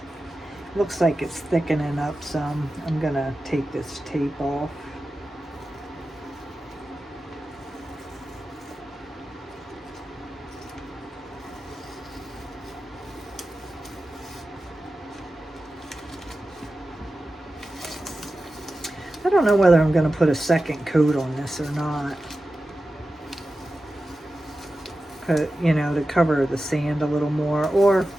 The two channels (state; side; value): normal; both; correlation 0.93